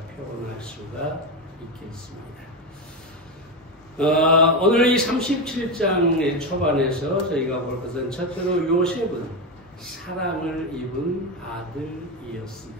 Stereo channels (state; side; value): normal; both; correlation 0.14